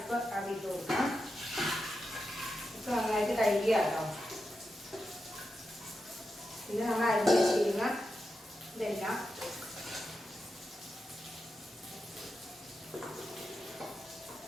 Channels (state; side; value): normal; both; correlation 0.89